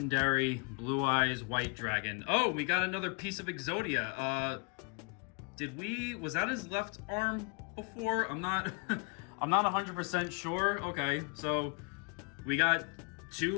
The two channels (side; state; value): right; quieter; 35.7 dB